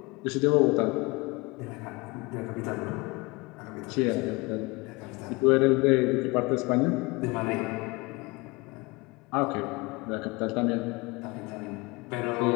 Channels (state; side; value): quieter; right; 25.4 dB